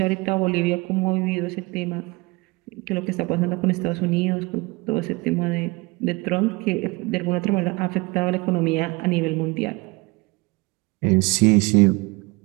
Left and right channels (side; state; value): left; quieter; 24.9 dB